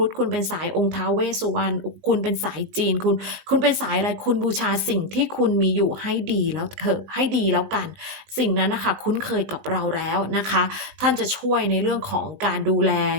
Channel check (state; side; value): late; left; 19 ms